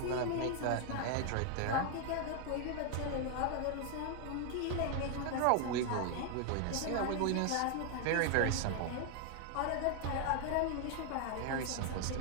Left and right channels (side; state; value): both; different; correlation 0.00